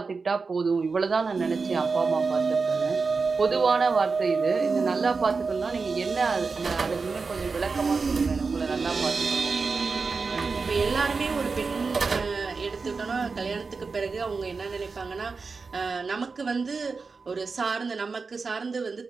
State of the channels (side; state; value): left; quieter; 4.5 dB